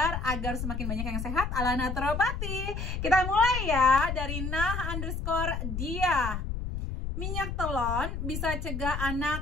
agar semakin banyak yang sehat ala naturopati. Kita mulai ya dari nah_dia. Minyak telon bisa cegah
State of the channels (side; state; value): left; noise; rumble, 4 dB below the sound